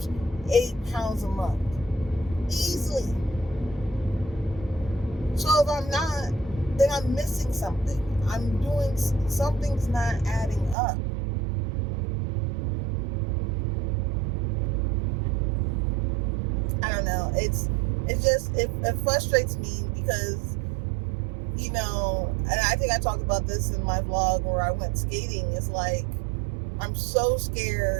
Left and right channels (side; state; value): left; drops out; at 10.8 s